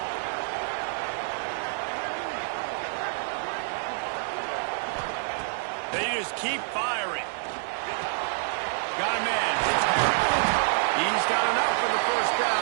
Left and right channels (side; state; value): left; silent; digital silence